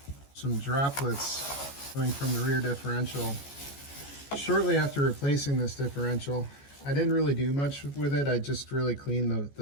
some droplets coming from the rear differential. Shortly after replacing this differential, I didn't really do much with it. I just really cleaned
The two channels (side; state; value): right; late; 14 ms